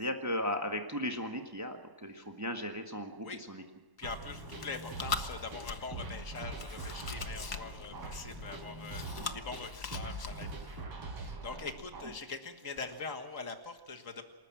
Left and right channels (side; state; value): left; late; 1.1 ms